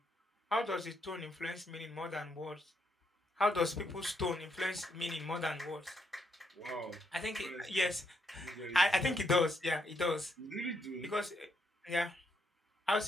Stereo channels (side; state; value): both; normal; correlation 0.76